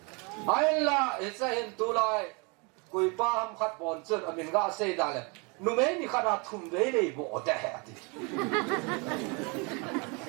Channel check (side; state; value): left; quieter; 31.4 dB